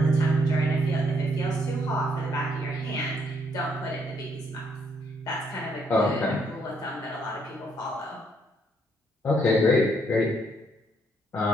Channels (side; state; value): both; normal; correlation 0.71